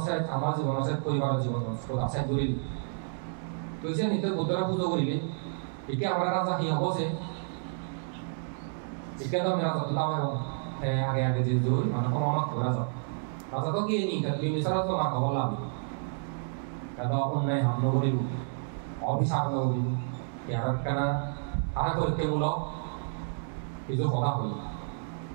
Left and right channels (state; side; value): silent; left; digital silence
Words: আমার জীবন আছে পরিবারের জীবন আছে জড়িল তুই যে নিতে বুদ্ধরা পুজো করিলি একে আমরা রাজা কি হবো সে একে তো আমি রাজা তো দাও আগে আগে যে জোর মানে কোনো আমার রাজা রাজা তো কি নি বিমিসারা তো না খবর লাভ কারণ অন্যায় হামলা করিব অভিশাপ করিব ইয়ার কেনা আরা পরীক্ষামূলক কিছু কথা হই